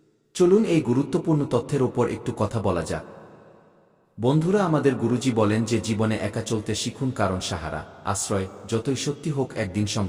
চলুন এই গুরুত্বপূর্ণ তথ্যের ওপর একটু কথা বলা যাক। বন্ধুরা, আমাদের গুরুজি বলেন যে জীবনে একা চলতে শিখুন, কারণ সাহারা, আশ্রয় যতই সত্যি হোক একদিন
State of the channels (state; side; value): identical; both; correlation 1.00